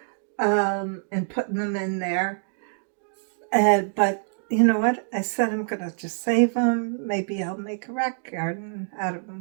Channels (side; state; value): left; silent; digital silence